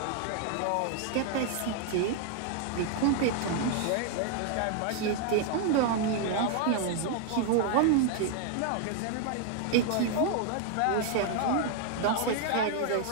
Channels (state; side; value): different; both; correlation 0.00